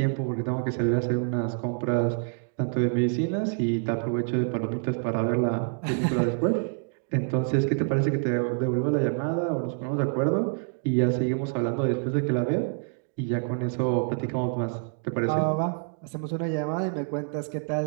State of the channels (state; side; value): silent; left; 60 dB below the other